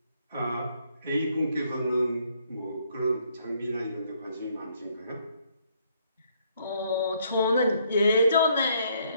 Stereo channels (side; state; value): both; inverted; correlation -0.69